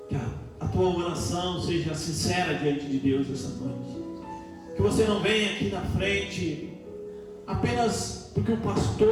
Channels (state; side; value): identical; both; correlation 1.00